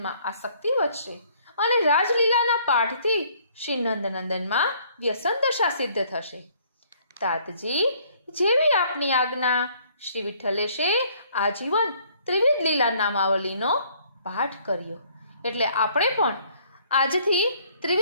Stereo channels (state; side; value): inverted; both; correlation -0.61